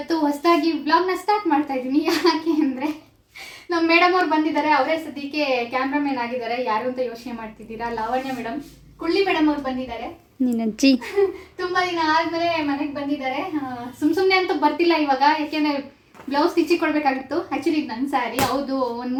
ಹೊಸದಾಗಿ ವ್ಲಾಗ್ನ ಸ್ಟಾರ್ಟ್ ಮಾಡ್ತಾ ಇದ್ದೀನಿ. ಯಾಕೆ ಅಂದರೆ ನಮ್ಮ ಮೇಡಮ್ ಅವ್ರು ಬಂದಿದ್ದಾರೆ. ಅವರೇ ಸದ್ಯಕ್ಕೆ ಕ್ಯಾಮ್ರಾಮನ್ ಆಗಿದ್ದಾರೆ. ಯಾರು ಅಂತ ಯೋಚನೆ ಮಾಡ್ತಿದ್ದೀರಾ? ಲಾವಣ್ಯ ಮೇಡಮ್, ಕುಳ್ಳಿ ಮೇಡಮ್ ಅವ್ರು ಬಂದಿದ್ದಾರೆ. ನೀನಜ್ಜಿ ತುಂಬ ದಿನ ಆದಮೇಲೆ ಮನೆಗೆ ಬಂದಿದ್ದಾರೆ. ಸುಮ್ಮನೆ ಅಂತೂ ಬರ್ತಿಲ್ಲ ಇವಾಗ, ಯಾಕೆಂದರೆ ಬ್ಲೌಸ್ ಸ್ಟಿಚಿಗೆ ಕೊಡಬೇಕಾಗಿತ್ತು. ಆ್ಯಕ್ಚುಲಿ ಇದು ನನ್ನ ಸ್ಯಾರಿ. ಹೌದು, ಒಂದು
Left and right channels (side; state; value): both; identical; correlation 1.00